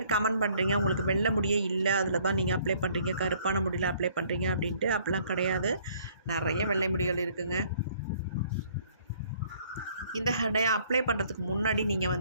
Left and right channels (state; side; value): inverted; both; correlation -0.61